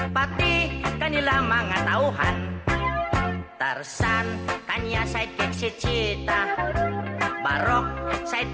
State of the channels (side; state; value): both; identical; correlation 1.00